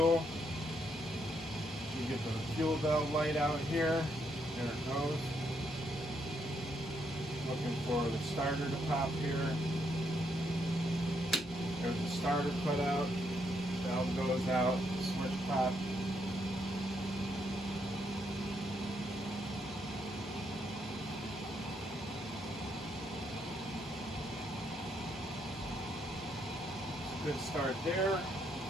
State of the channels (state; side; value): normal; both; correlation 0.76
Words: You get the fuel valve light out here. There it goes. Looking for the starter to pop here. There's the starter put out. Valve goes out. Switch pop. Good start there.